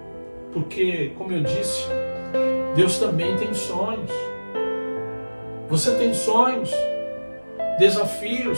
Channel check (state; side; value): inverted; both; correlation -1.00